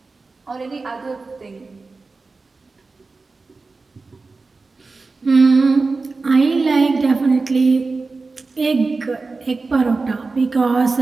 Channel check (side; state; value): left; quieter; 3.9 dB